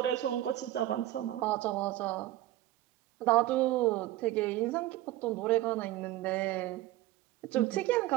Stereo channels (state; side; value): quieter; left; 15.4 dB